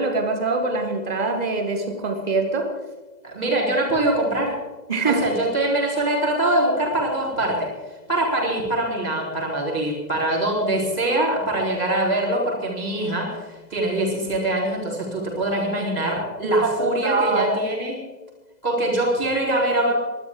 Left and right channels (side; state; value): right; late; 2.0 ms